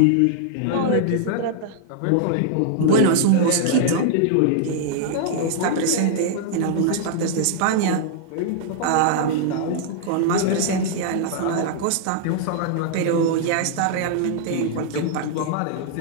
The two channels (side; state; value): both; different; correlation -0.01